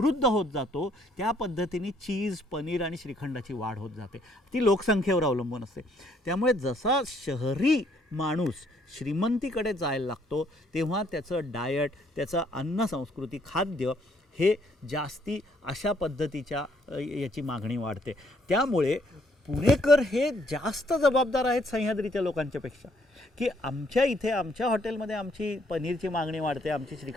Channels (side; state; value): both; normal; correlation 0.67